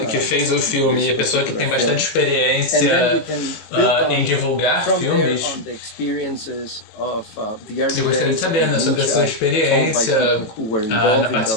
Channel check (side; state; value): right; late; 18 ms